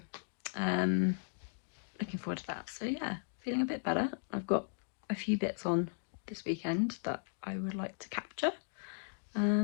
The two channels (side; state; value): right; silent; digital silence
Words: looking forward to that. So yeah, feeling a bit better. I've got a few bits on this weekend that I would like to capture,